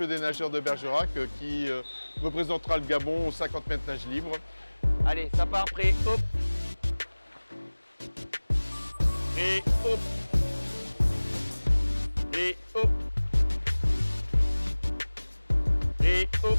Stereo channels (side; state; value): both; inverted; correlation -1.00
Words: des nageurs de Bergerac qui représentera le Gabon aux 50 mètres nage libre. Allez, ça part, prêt, hop. Et hop. Et hop. Et hop.